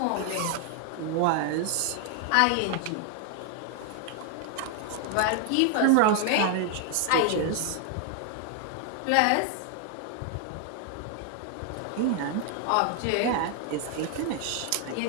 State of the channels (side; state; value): both; different; correlation 0.00